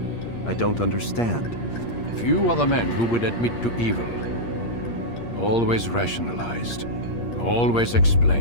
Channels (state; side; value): late; right; 8.5 ms